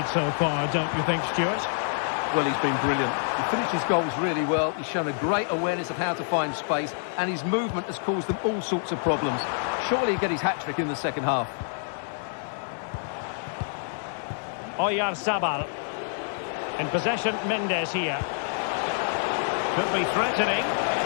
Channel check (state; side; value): silent; right; digital silence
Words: so far, don't you think, Stuart? Well, he's been brilliant. He finished his goals really well. He's shown a great awareness of how to find space, and his movement has caused them all sorts of problems. Surely he'll get his hat-trick in the second half. Oyarzabal. In possession, Mendes here. Could be threatening.